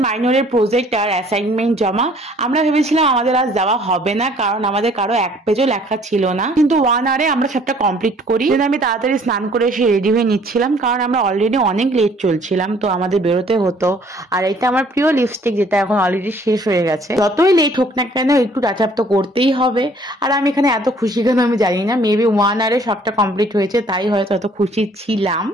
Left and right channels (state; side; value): normal; both; correlation 0.58